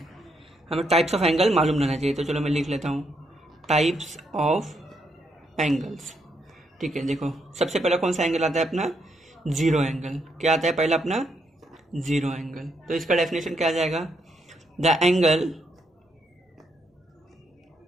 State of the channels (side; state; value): both; normal; correlation 0.77